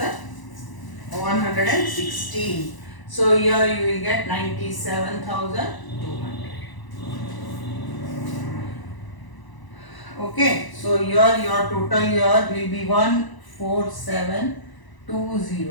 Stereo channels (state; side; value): late; right; 1.0 ms